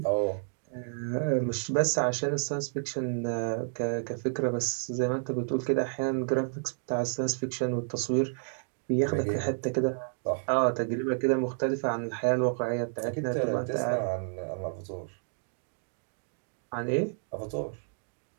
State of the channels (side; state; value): left; silent; digital silence